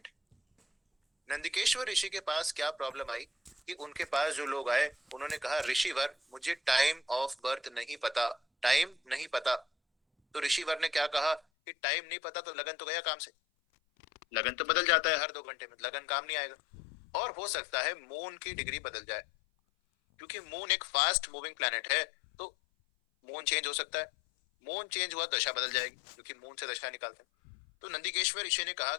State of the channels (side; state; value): right; drops out; at 11.4 s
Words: है। नंदिकेश्वर ऋषि के पास क्या प्रॉब्लम आई कि उनके पास जो लोग आए उन्होंने कहा ऋषिवर मुझे टाइम ऑफ बर्थ नहीं पता, टाइम नहीं पता। तो ऋषिवर ने क्या कहा कि टाइम नहीं पता तो लगन तो गया काम से, लगन तो बदल जाता है हर 2 घंटे में, लगन काम नहीं आएगा। और हो सकता है मून की डिग्री बदल जाए, क्योंकि मून एक फास्ट मूविंग प्लैनेट है, तो मून चेंज हो सकता है। मून चेंज हुआ दशा बदल जाएगी, क्योंकि मून से दशा निकालते हैं। तो नंदिकेश्वर ऋषि ने कहा